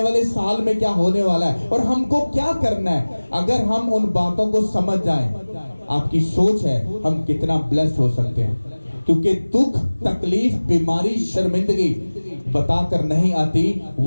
वाले साल में क्या होने वाला है और हमको क्या करना है, अगर हम उन बातों को समझ जाएं, आपकी सोच है हम कितना ब्लेस्ड हो सकते हैं। क्योंकि दुख, तकलीफ, बीमारी, शर्मिंदगी बताकर नहीं आती,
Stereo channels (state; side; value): inverted; both; correlation -1.00